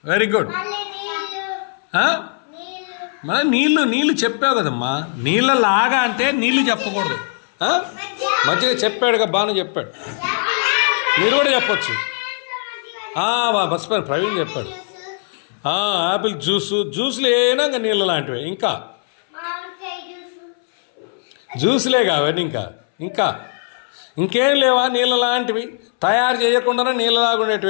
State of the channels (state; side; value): silent; right; 64 dB below the other